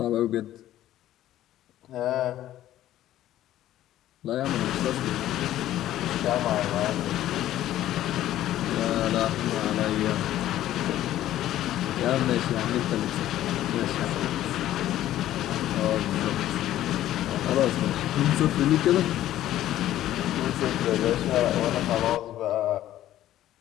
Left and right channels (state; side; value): quieter; right; 13.3 dB